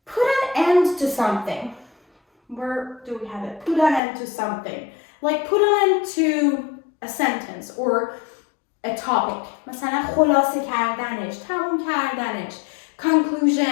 put an end to something. Where do we have it? Put an end to something. Like put an end to a sentence or a topic. مثلا خلاصه کردنش، تموم کردنش.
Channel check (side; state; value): right; drops out; at 4.0 s